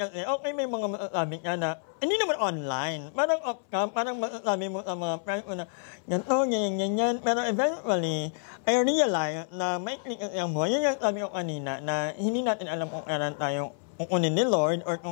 okay, may mga masasabi ka na, hindi naman online. Parang off-cam, parang masasabi mo sa mga friends mo na, ganito, ganyan. Pero eventually, I realized na may click kasi ang buhay. Yun yung sabi ko kanina, na hindi natin alam kung kailan tayo kukunin ni Lord or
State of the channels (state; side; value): silent; right; 59 dB below the other